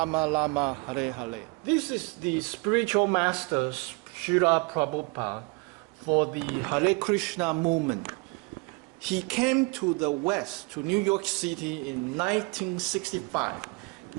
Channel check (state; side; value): quieter; left; 28.9 dB